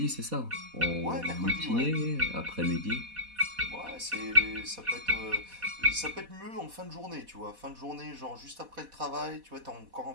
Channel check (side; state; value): left; late; 4.1 ms